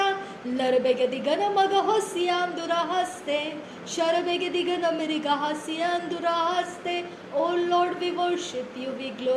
Larabegadigan Magahosian Durahaste, Sharabegadigan Amerigahasian Durahaste. Oh Lord, we worship you, we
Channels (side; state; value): both; identical; correlation 1.00